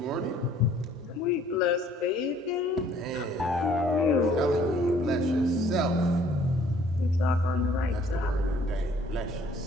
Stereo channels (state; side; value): normal; both; correlation 0.59